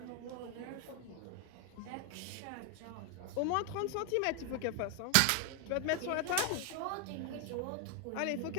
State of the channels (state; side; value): different; both; correlation 0.00